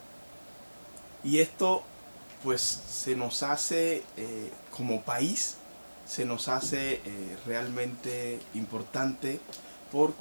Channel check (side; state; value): both; inverted; correlation -1.00